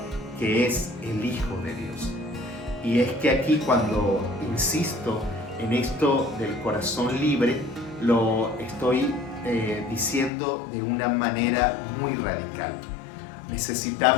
que es el Hijo de Dios. Y es que aquí, cuando insisto en esto del corazón libre, lo estoy diciendo de una manera muy radical.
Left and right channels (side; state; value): right; drops out; at 10.3 s